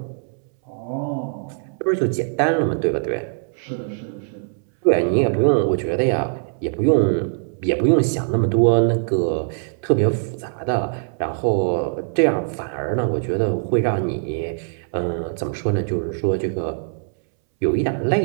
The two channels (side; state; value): left; silent; 64 dB below the other